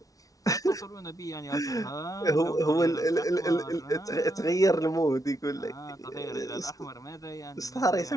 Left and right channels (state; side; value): late; right; 0.17 ms